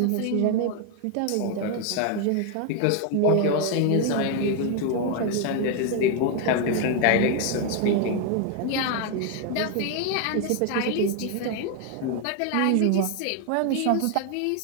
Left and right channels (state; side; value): different; both; correlation 0.00